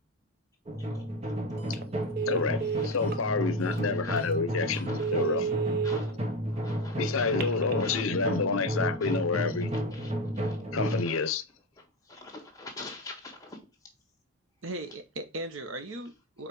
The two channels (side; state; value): both; normal; correlation 0.17